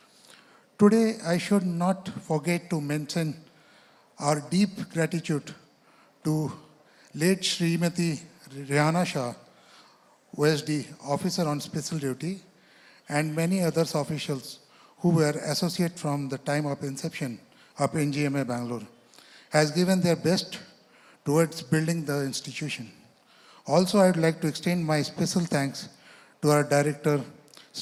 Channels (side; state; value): both; identical; correlation 1.00